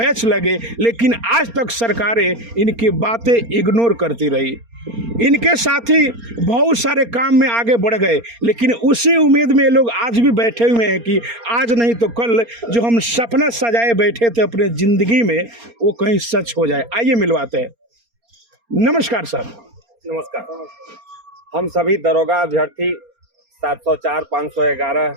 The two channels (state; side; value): late; left; 4.3 ms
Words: लगे, लेकिन आज तक सरकारें इनकी बातें इग्नोर करती रही। इनके साथी बहुत सारे काम में आगे बढ़ गए, लेकिन उसी उम्मीद में लोग आज भी बैठे हुए हैं कि आज नहीं तो कल जो हम सपना सजाए बैठे थे अपने ज़िंदगी में, वो कहीं सच हो जाए। आइए मिलवाते हैं। नमस्कार सर। नमस्कार। हम सभी दरोगा अभ्यर्थी 704 511